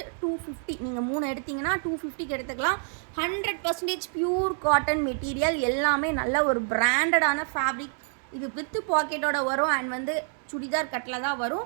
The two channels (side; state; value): left; silent; 56 dB below the other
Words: 250. நீங்கள் 3 எடுத்திங்கன்னா 250க்கு எடுத்துக்கலாம். 100% பியூர் காட்டன் மெட்டீரியல். எல்லாமே நல்ல ஒரு பிராண்டடான ஃபேப்ரிக். இது வித்து பாக்கெட்டோட வரும். அண்ட் வந்து சுடிதார் கட்டில் தான் வரும்.